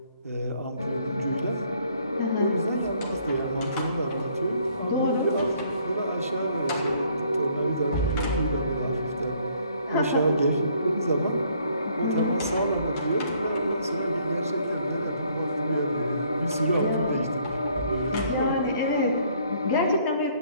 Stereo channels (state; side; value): inverted; both; correlation -0.64